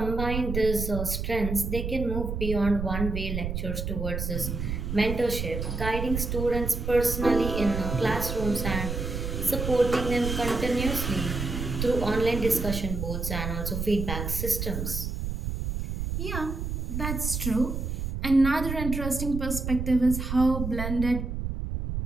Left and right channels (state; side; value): noise; right; rumble, 3 dB below the sound